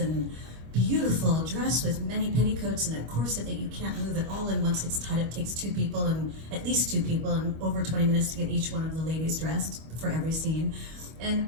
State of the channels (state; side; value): late; left; 25 ms